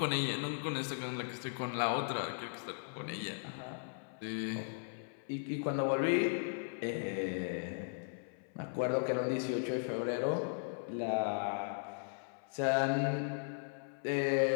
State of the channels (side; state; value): right; silent; 53 dB below the other